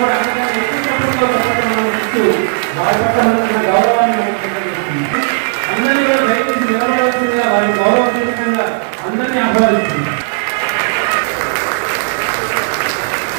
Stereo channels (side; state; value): left; silent; digital silence